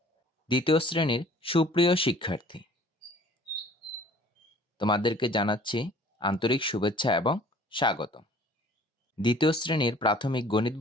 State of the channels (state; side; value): normal; both; correlation 0.52